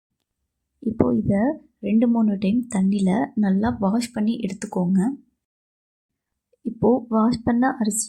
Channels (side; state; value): both; identical; correlation 1.00